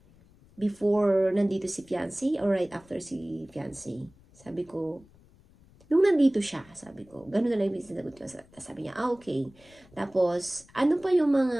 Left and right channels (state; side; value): noise; left; rumble, 27 dB below the sound